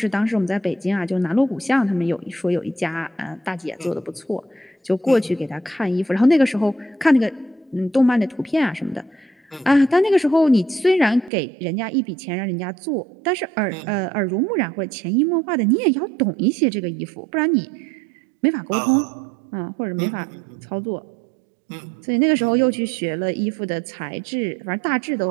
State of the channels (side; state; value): left; drops out; at 11.3 s